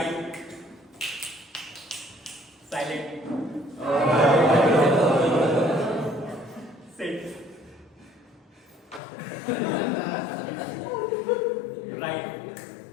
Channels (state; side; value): drops out; right; at 9.0 s